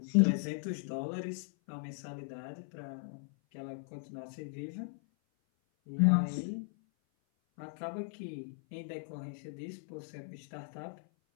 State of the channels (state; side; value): silent; right; 53 dB below the other